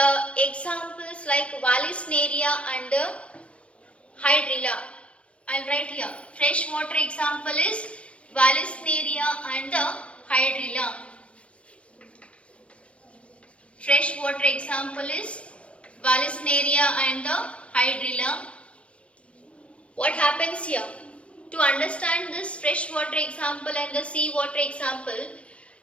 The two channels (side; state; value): right; late; 0.061 ms